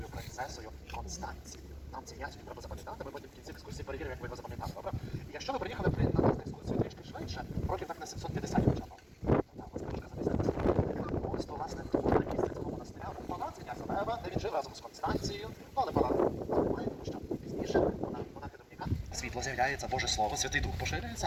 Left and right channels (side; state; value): both; identical; correlation 1.00